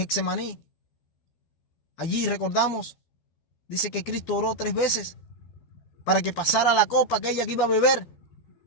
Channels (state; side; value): late; right; 12 ms